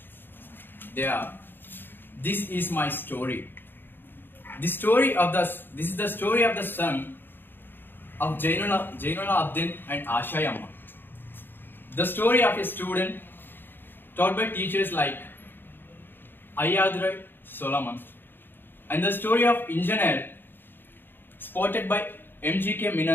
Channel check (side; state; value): right; late; 0.098 ms